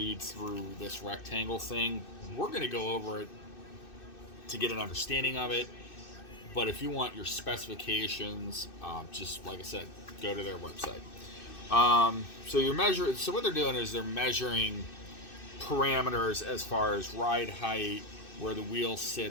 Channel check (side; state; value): right; late; 2.6 ms